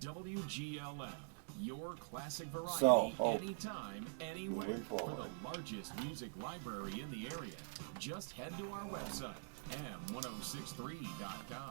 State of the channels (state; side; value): silent; left; digital silence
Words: your classic variety, So, anytime, anywhere. moving For forward. the largest music library in the area, just head to our website,